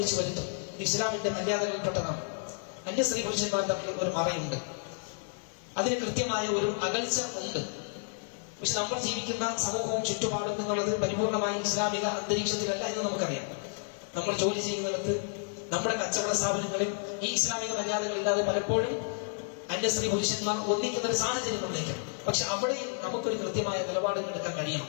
വരുത്തും. ഇസ്ലാമിന്റെ മര്യാദകളിൽപ്പെട്ടതാണ്. അന്യ സ്ത്രീ പുരുഷന്മാർ തമ്മിൽ ഒരു മറയുണ്ട്, അതിന് കൃത്യമായ ഒരു അകൽച്ച ഉണ്ട്. പക്ഷെ നമ്മൾ ജീവിക്കുന്ന സമൂഹവും ചുറ്റുപാടും എന്നുള്ളത് പരിപൂർണമായി ഇസ്ലാമിക അന്തരീക്ഷത്തിലല്ല എന്ന് നമുക്കറിയാം. നമ്മൾ ജോലി ചെയ്യുന്നിടത്ത്, നമ്മുടെ കച്ചവട സ്ഥാപനങ്ങളിൽ ഈ ഇസ്ലാമിക മര്യാദകളില്ലാതെ പലപ്പോഴും അന്യ സ്ത്രീ പുരുഷന്മാർ ഒന്നിക്കുന്ന ഒരു സാഹചര്യം നമ്മളേക്കും. പക്ഷെ അവിടെ നമുക്കൊരു കൃത്യമായ നിലപാടുകൾ എടുക്കാൻ കഴിയണം.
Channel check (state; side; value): silent; right; 56 dB below the other